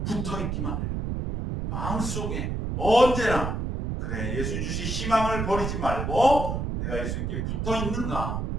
붙어있기만 해라. 마음속에 언제나 그래 예수 주신 희망을 버리지 말고 내가 예수님께 붙어있는가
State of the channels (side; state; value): right; noise; rumble, 2 dB below the sound